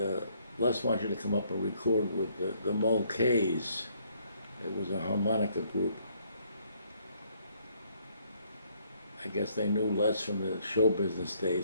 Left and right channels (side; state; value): both; inverted; correlation -0.67